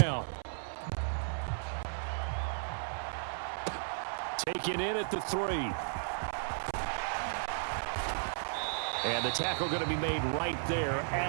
Taken in at the 3. And the tackle going to be made right there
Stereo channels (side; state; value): left; silent; 55 dB below the other